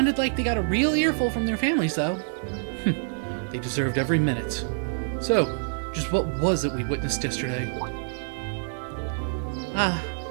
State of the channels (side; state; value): left; silent; 61 dB below the other